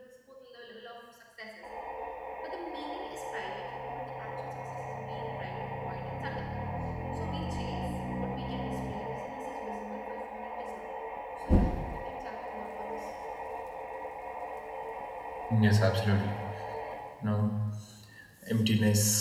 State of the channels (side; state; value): both; identical; correlation 1.00